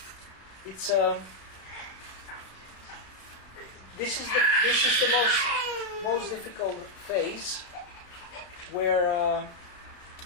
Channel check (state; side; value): late; right; 32 ms